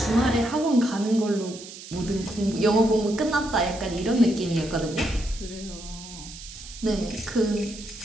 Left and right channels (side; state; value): right; noise; hiss, 14 dB below the sound